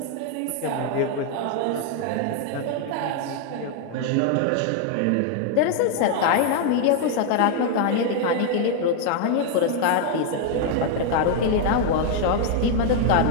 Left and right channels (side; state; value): both; different; correlation 0.00